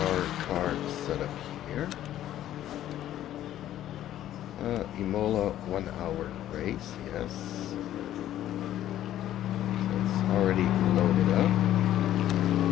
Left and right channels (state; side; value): quieter; right; 12.4 dB